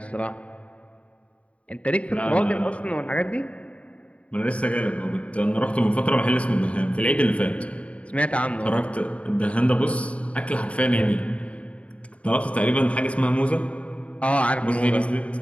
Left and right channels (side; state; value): right; late; 0.064 ms